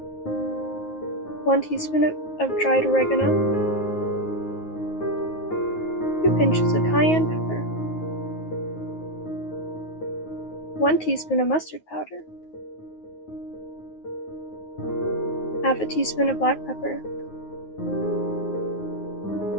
One teaspoon of dried oregano. 2 pinches of cayenne pepper. 1 teaspoon of mustard powder. Half a teaspoon of black pepper.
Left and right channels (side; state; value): right; late; 9.4 ms